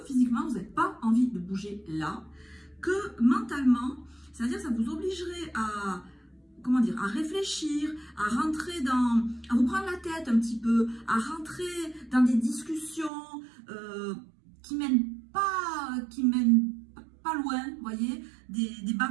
physiquement vous n'avez pas envie de bouger là, que mentalement, c'est-à-dire ça vous obligerait à, comment dire, à réfléchir, à rentrer à vous prendre la tête un petit peu, à rentrer dans des discussions qui mènent pas loin, vous voyez, des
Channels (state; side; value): drops out; left; at 13.1 s